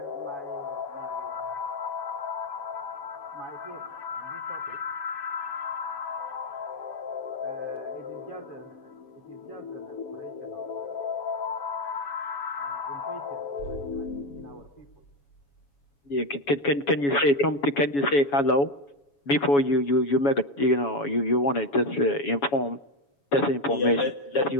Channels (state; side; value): late; right; 7.1 ms